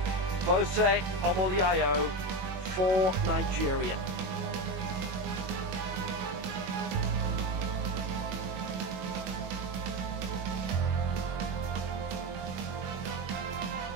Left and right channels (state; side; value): late; left; 21 ms